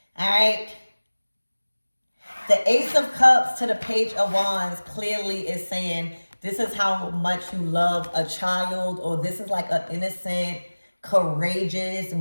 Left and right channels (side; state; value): both; inverted; correlation -1.00